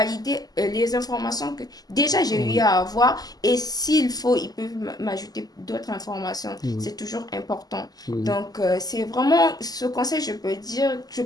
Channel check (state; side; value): late; right; 0.18 ms